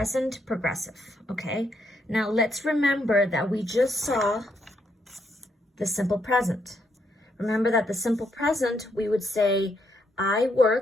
progressive, okay? Now let's remember that we just saw the simple present. Remember that the simple present, we would say, I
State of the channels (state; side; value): normal; both; correlation 0.76